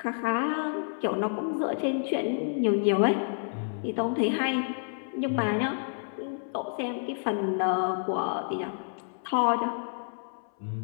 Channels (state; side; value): silent; right; 58 dB below the other